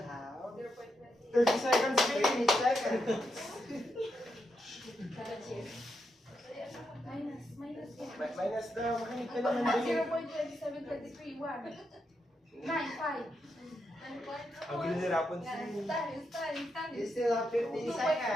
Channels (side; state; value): both; normal; correlation 0.83